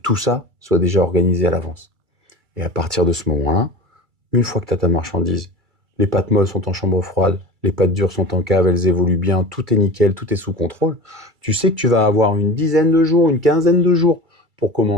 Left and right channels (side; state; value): left; late; 2.3 ms